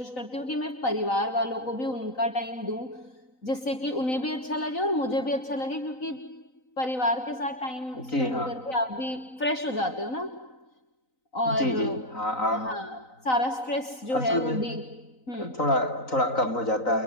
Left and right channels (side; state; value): right; late; 3.9 ms